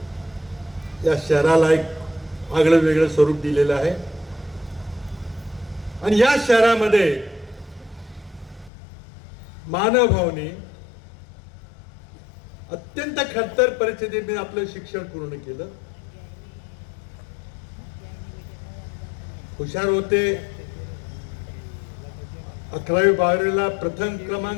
या शहराला एक आगळं वेगळं स्वरूप दिलेलं आहे. आणि या शहरामध्ये मानवभावनी अत्यंत खडतर परिस्थितीत आपलं शिक्षण पूर्ण केलं. हुशार होते. 11वी 12वीला प्रथम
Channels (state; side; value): drops out; right; at 8.7 s